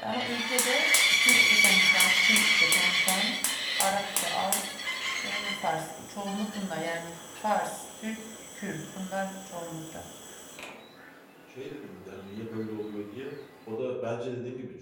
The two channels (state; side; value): identical; both; correlation 1.00